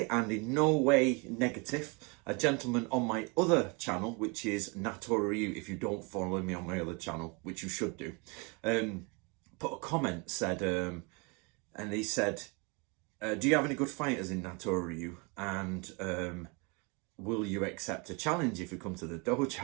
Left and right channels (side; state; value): left; quieter; 30.8 dB